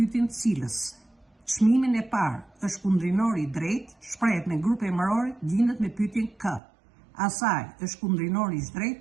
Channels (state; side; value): drops out; left; at 6.6 s